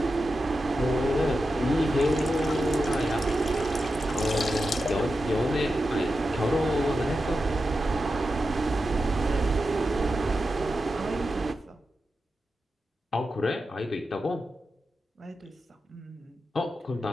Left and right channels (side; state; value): both; normal; correlation 0.90